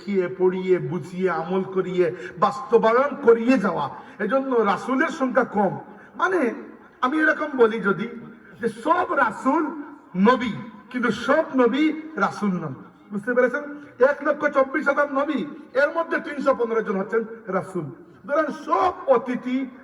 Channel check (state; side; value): identical; both; correlation 1.00